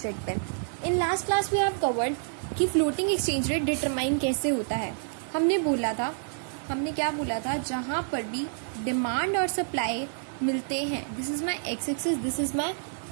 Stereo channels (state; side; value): silent; left; digital silence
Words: rate पे. In last class we have covered कि floating exchange rate determine कैसे होता है. हमने क्या बोला था जहाँ पर भी डिमांड और सप्लाई मिलते हैं, this is my X axis, this is my